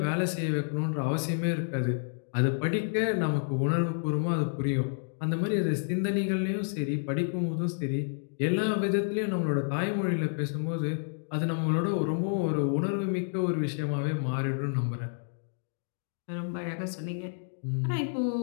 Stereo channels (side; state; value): right; silent; digital silence